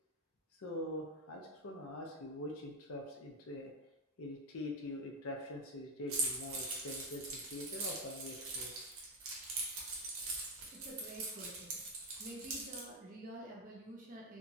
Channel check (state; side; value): normal; both; correlation 0.07